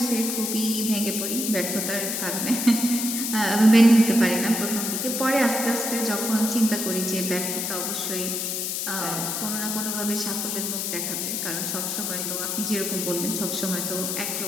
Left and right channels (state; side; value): noise; left; hiss, 2 dB below the sound